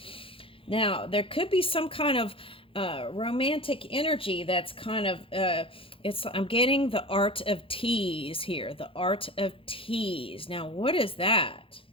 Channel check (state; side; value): late; right; 0.26 ms